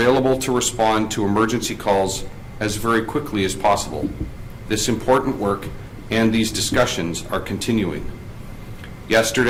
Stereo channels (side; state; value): both; identical; correlation 1.00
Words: to respond to emergency calls as very quickly as possible. This important work and these discussions are continuing.